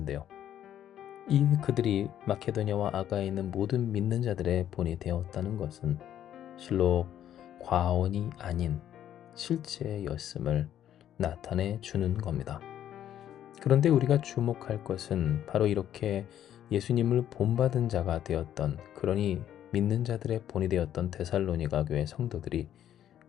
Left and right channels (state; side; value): quieter; right; 10.8 dB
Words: 이 그들이 마케도냐와 아가에 있는 모든 믿는 자들의 본이 되었다는 것은 실로 과언이 아닌 실제였음을 나타내 주는 겁니다. 그런데 우리가 주목할 것은 바로 이렇게 예수님을 본받은 자가 되었던, 그러니 믿는 자들의 본이 되었던 데살로니가 교회 성도들이